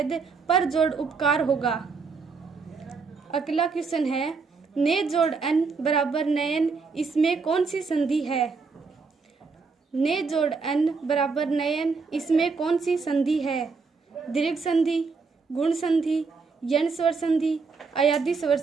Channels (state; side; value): quieter; left; 4.7 dB